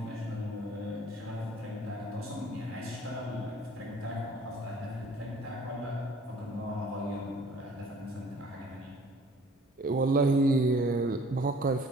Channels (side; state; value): both; normal; correlation 0.53